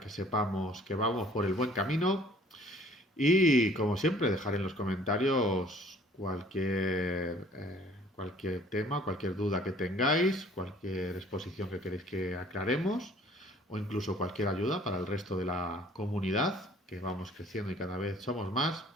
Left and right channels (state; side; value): normal; both; correlation 0.55